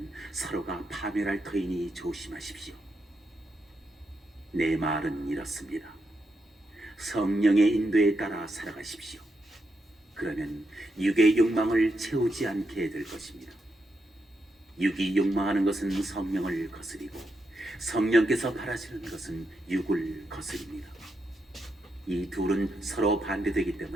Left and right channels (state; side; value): normal; both; correlation 0.83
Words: 서로가 파멸할 터이니 조심하십시오. 내 말은 이렇습니다. 성령의 인도에 따라 살아가십시오. 그러면 육의 욕망을 채우지 않게 될 것입니다. 육이 욕망하는 것은 성령을 거스리고 성령께서 바라시는 것은 육을 거스립니다. 이 둘은 서로 반대되기